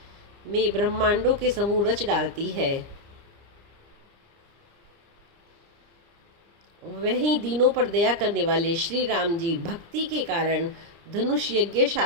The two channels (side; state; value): left; late; 29 ms